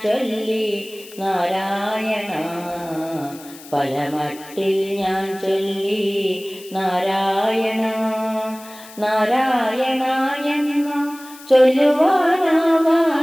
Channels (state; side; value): noise; left; hiss, 19 dB below the sound